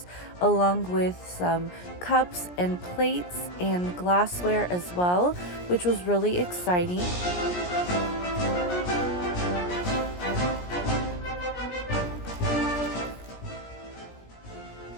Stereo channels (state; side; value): late; right; 17 ms